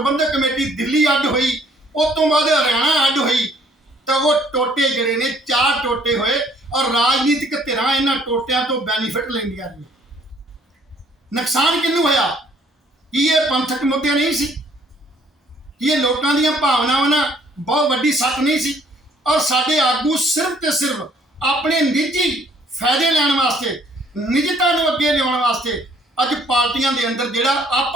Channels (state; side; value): normal; both; correlation 0.62